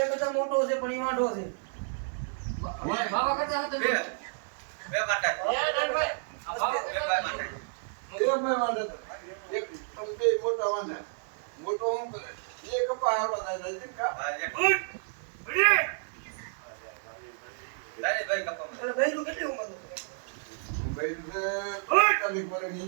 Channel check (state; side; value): silent; left; 57 dB below the other